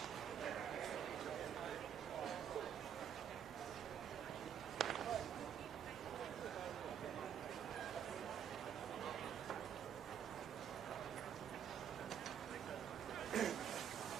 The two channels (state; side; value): quieter; left; 8.7 dB